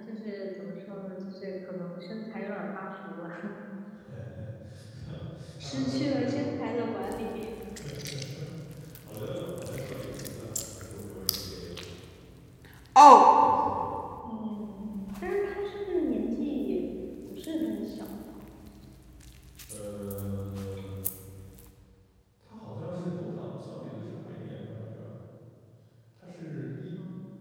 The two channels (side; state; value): both; identical; correlation 1.00